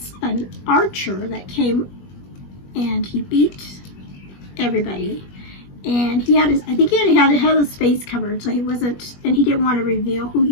an archer that came and he beat everybody, and he had I think he had his face covered, so he wasn't, and he didn't want to reveal who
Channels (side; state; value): right; late; 21 ms